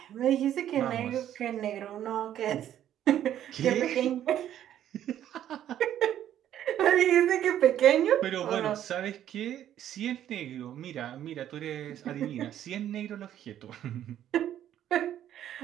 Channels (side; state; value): left; quieter; 11.2 dB